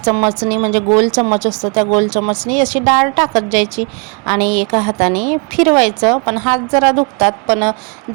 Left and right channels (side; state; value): left; quieter; 35.0 dB